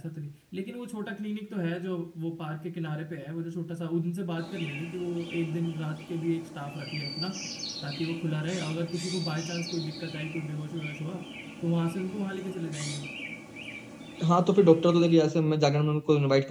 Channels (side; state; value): both; identical; correlation 1.00